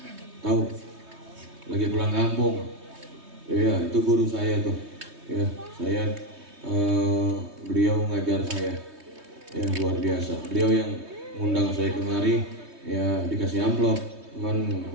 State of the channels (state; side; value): late; left; 3.2 ms